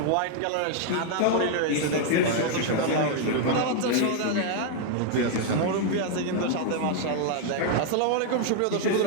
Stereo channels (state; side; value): different; both; correlation 0.00